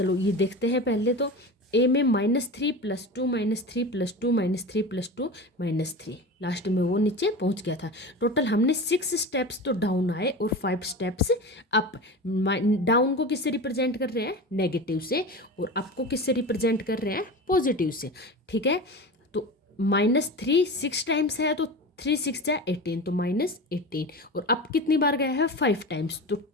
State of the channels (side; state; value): both; normal; correlation 0.29